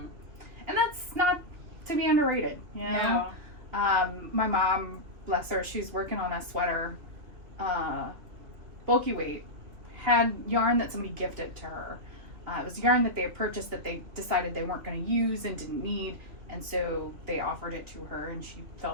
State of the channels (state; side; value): late; left; 2.9 ms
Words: and that's not to be underrated. You know, No. my mom, bless her, she's working on a sweater bulky weight, had yarn that somebody gifted to her. It was yarn that they had purchased that they decided they weren't going to use and didn't need, and so they offered it to her, and she